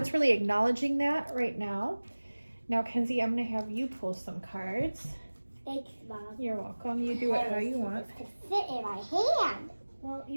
really acknowledging that right now. Now, Kenzie, I'm going to have you pull some cards. Thanks, Mom. You're welcome. You do it how you want. It fit in my hand. Well,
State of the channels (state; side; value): inverted; both; correlation -1.00